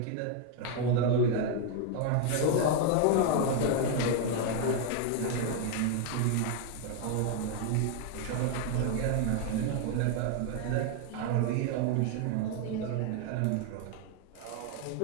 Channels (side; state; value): both; different; correlation 0.01